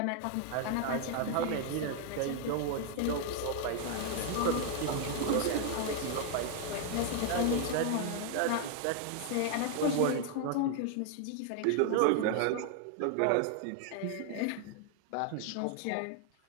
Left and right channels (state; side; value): different; both; correlation 0.00